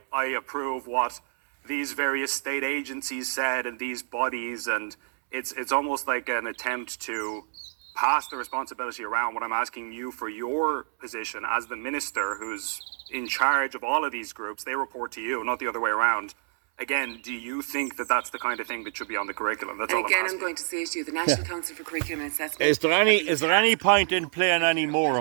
approve what these various state agencies said and these bodies. And it's almost like an attempt to pass the responsibility around. What I'm asking you for your position as the minister who's in charge of all of these groups, they report to you, not the other way around. Again, do you think that that's the kind of thing that should be on the curriculum? That's all I'm asking. I'm going to say to you, the National Council for Curriculum and Assessment. Is there any point in playing any more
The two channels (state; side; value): silent; left; 60 dB below the other